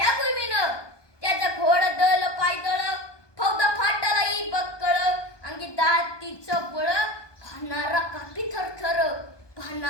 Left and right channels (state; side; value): late; right; 1.2 ms